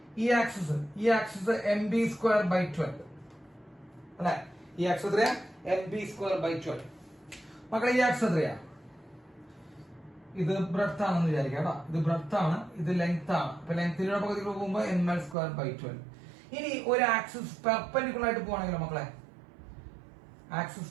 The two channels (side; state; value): left; drops out; at 15.4 s